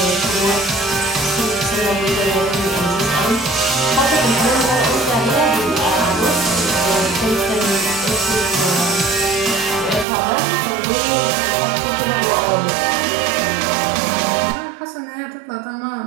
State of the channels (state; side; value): drops out; left; at 10.1 s